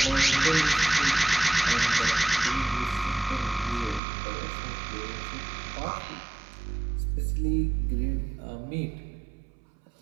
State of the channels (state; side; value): drops out; left; at 4.0 s